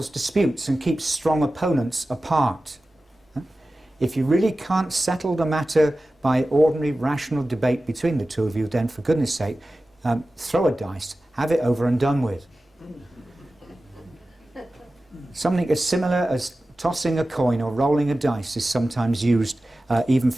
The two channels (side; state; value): both; normal; correlation 0.95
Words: disputes and keeps strong opponents apart. If you really can't settle the matter by ordinary rational debate between the two of you, then for goodness sake, throw a dice, have it over and done with. Something as similar as tossing a coin or rolling a dice is sometimes used even